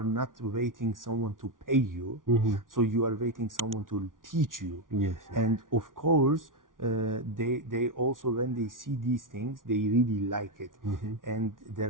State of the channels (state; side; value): late; left; 0.89 ms